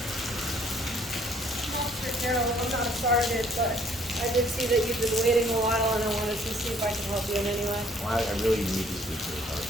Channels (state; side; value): normal; both; correlation 0.61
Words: Officer Carroll, I'm not a sergeant, but I did see that you've been waiting a while, and I wanted to see if I can help you in any way. Well, I really need to speak to the